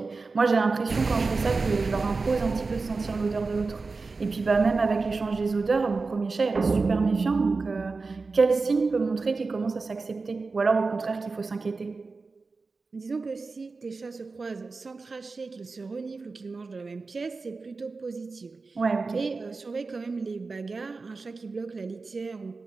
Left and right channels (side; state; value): left; quieter; 4.1 dB